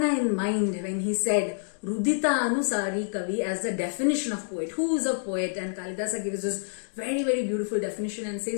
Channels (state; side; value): silent; right; digital silence